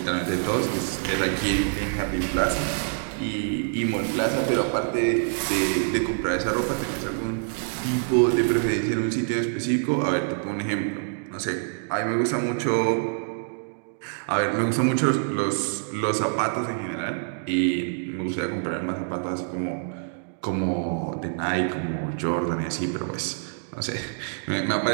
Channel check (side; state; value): left; silent; digital silence